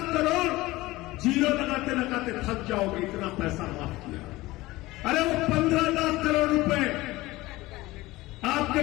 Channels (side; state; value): right; quieter; 19.3 dB